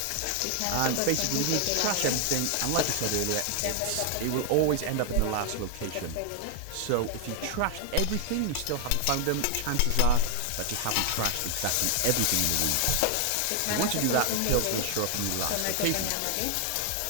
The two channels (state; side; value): different; both; correlation 0.00